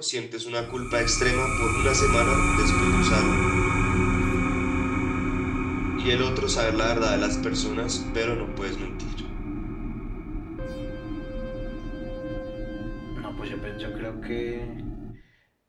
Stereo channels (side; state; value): both; identical; correlation 1.00